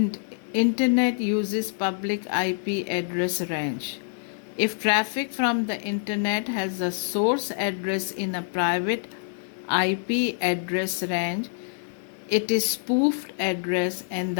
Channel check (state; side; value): silent; right; digital silence